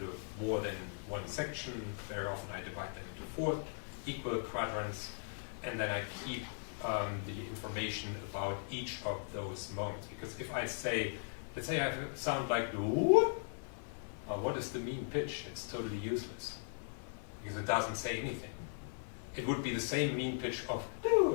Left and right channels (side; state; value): right; silent; 52 dB below the other